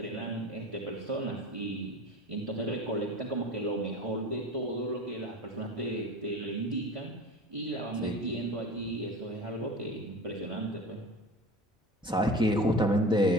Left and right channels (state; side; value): normal; both; correlation 0.35